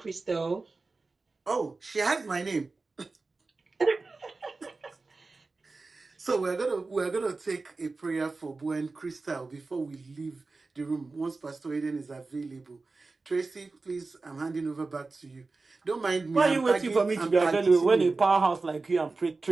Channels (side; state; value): left; quieter; 3.7 dB